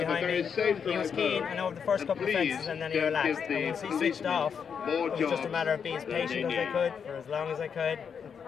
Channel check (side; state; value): right; quieter; 6.8 dB